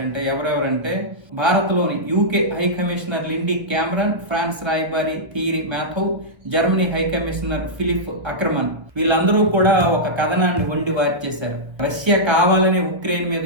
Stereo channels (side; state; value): left; late; 1.5 ms